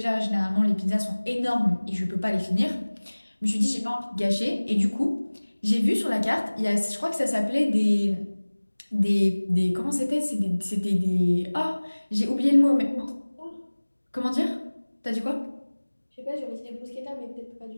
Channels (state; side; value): inverted; both; correlation -1.00